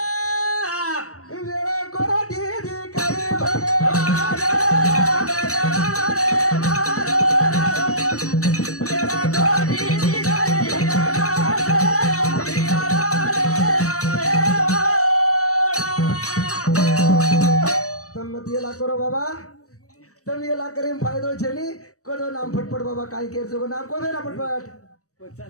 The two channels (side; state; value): right; late; 0.66 ms